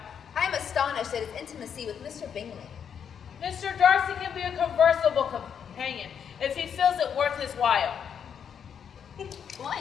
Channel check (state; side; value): quieter; right; 7.7 dB